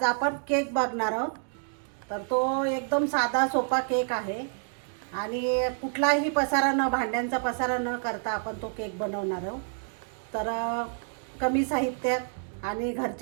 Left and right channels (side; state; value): left; silent; digital silence